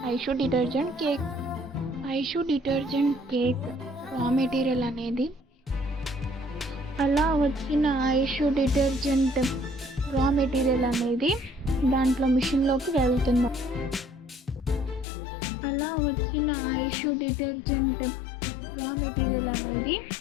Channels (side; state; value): right; drops out; at 15.1 s